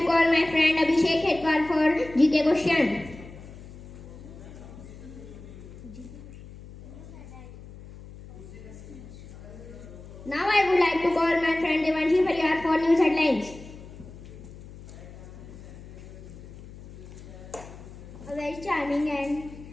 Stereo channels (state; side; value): noise; left; hum, 16 dB below the sound